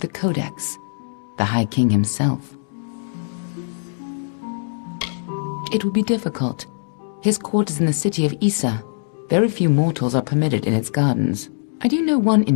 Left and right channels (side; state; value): right; silent; digital silence